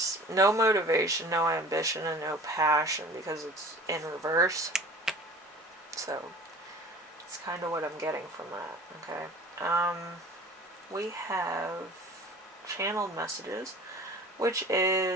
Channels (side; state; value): both; normal; correlation 0.43